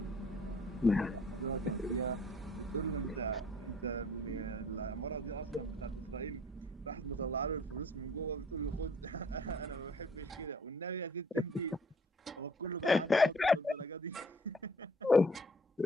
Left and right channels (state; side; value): normal; both; correlation 0.55